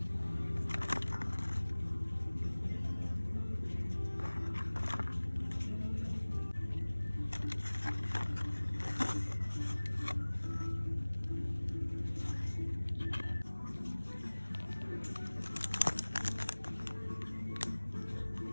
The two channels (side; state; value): both; inverted; correlation -1.00